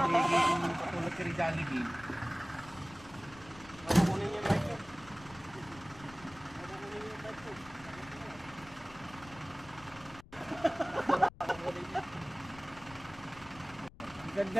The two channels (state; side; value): noise; left; rumble, 20 dB below the sound